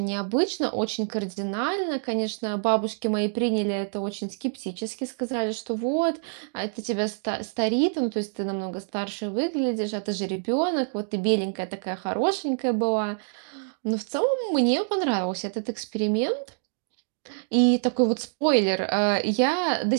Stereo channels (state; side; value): silent; left; digital silence